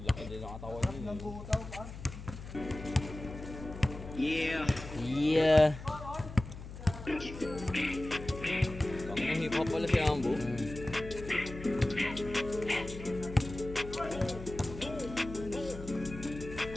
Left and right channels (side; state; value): left; noise; hum, 12 dB below the sound